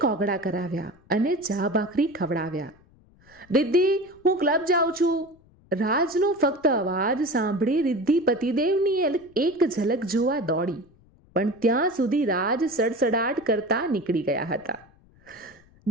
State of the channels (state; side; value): noise; left; rumble, 29 dB below the sound